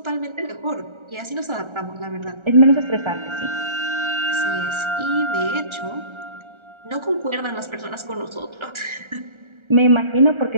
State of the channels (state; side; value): late; left; 1.3 ms